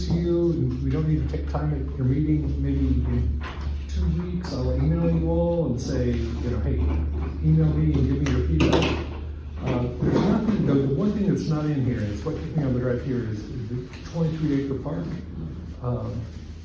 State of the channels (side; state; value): both; identical; correlation 1.00